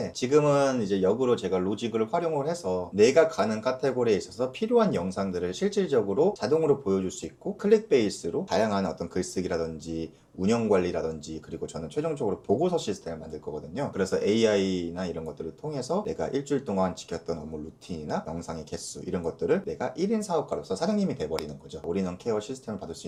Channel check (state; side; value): identical; both; correlation 1.00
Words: 지금은 이제 역으로 제가 로직을 활용을 해서 내가 가는 카테고리에 있어서 필요한 영상들을 실질적으로 자동으로 보여줄 수 있고, 클릭 베이스로 다양한 어떤 글쓰기라든지 운영 관리라든지, 그리고 저는 최종적으로 보고서 시스템을 만들 거거든요. 그래서 AI나 이런 것들을 통해서 내가 일주일 동안 지켰던 업무 루틴이나 영상의 개수, 이런 것들을 내가 1인 사업가로서 사장님이 돼버리는 거죠. 올인원 케어 시스템을 받을 수